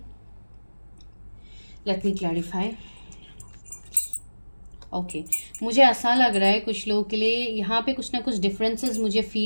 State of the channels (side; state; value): both; inverted; correlation -1.00